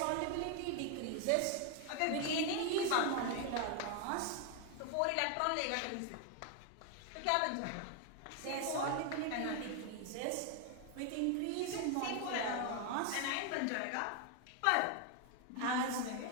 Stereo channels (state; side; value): different; both; correlation 0.01